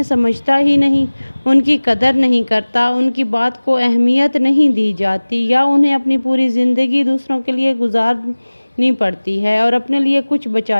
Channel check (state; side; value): inverted; both; correlation -1.00